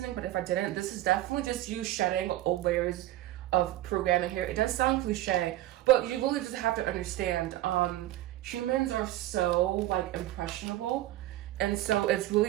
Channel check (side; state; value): left; quieter; 15.0 dB